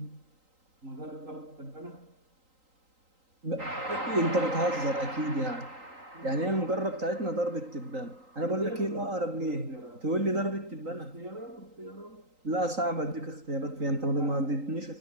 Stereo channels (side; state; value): left; late; 3.8 ms